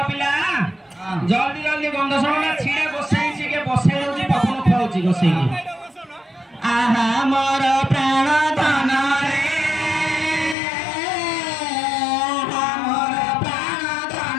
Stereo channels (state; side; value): drops out; right; at 10.6 s